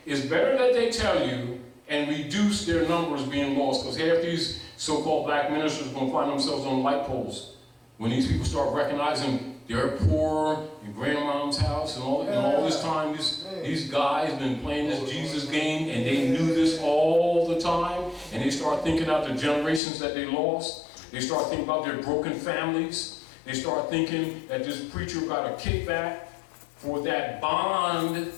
it's better that they tell you and reduce their numbers being lost, because half these so-called black ministers are going to find themselves on light poles. When these people start recognizing they're poor in grandmom's house and all this time, these guys been playing this Jesus game and they knew this all the time, and they start thinking out the generations that they lost. They start thinking about their broken families. They start thinking that this preacher got a kickback for that bond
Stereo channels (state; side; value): drops out; right; at 19.8 s